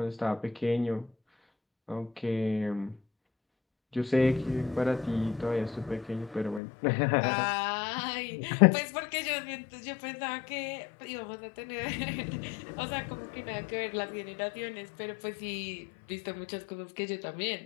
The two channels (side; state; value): right; drops out; at 6.6 s